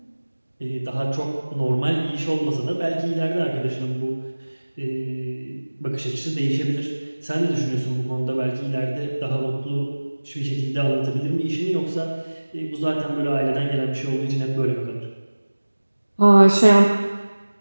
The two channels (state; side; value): inverted; both; correlation -1.00